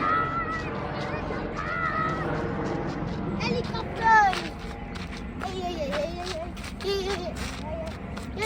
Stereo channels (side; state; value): both; identical; correlation 1.00